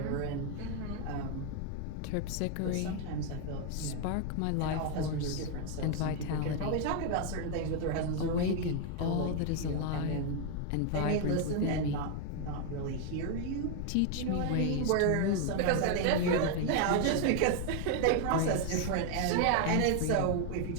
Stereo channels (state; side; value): different; both; correlation 0.01